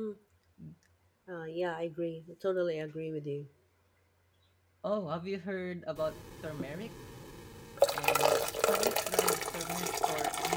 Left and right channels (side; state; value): both; identical; correlation 1.00